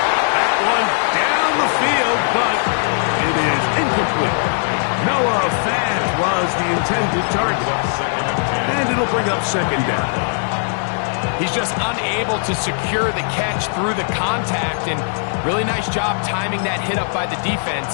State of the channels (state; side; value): silent; right; 63 dB below the other